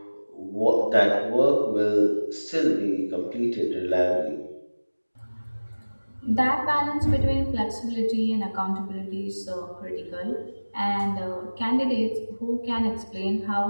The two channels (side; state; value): both; inverted; correlation -1.00